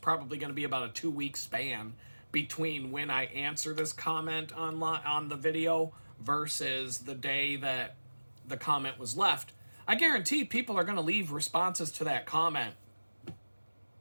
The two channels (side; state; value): both; inverted; correlation -1.00